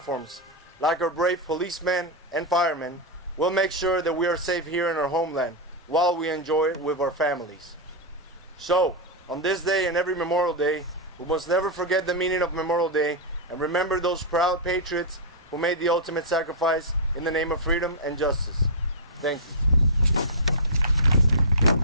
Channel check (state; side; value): normal; both; correlation -0.08